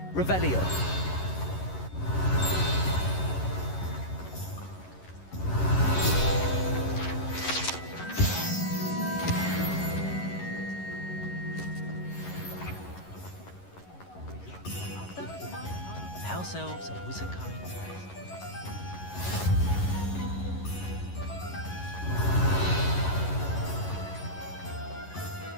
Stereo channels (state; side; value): late; right; 11 ms